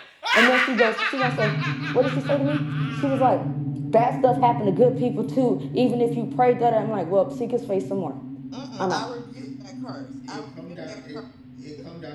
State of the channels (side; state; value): both; identical; correlation 1.00